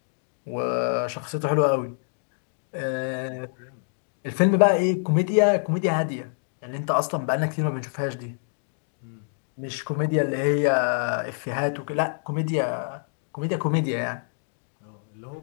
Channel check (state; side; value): silent; right; digital silence